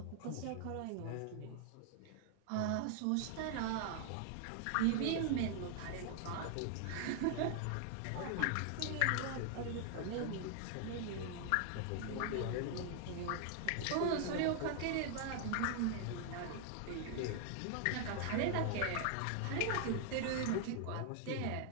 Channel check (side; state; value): both; different; correlation 0.00